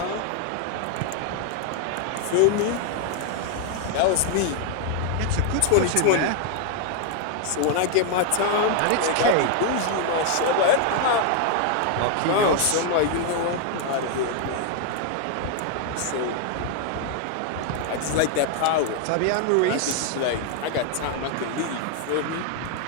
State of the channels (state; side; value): different; both; correlation 0.00